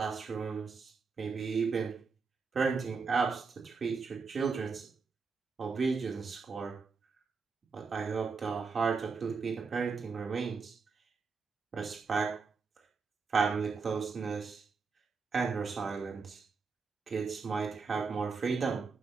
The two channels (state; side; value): quieter; left; 4.9 dB